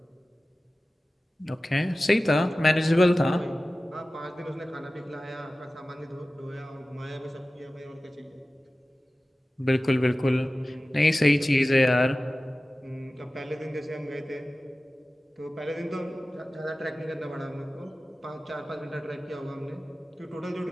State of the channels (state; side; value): normal; both; correlation 0.96